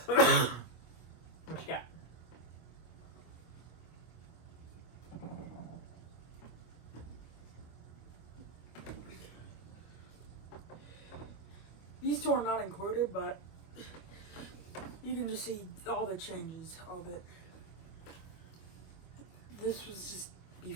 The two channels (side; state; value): right; late; 25 ms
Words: what you got? These two are not included, but you can just see all the changes of it. This was just